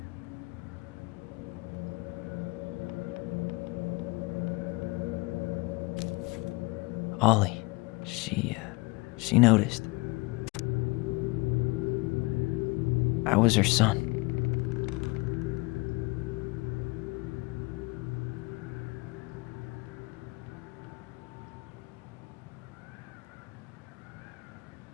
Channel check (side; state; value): right; quieter; 25.2 dB